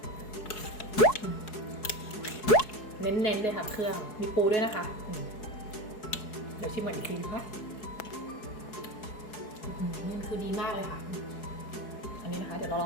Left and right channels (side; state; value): right; late; 4.7 ms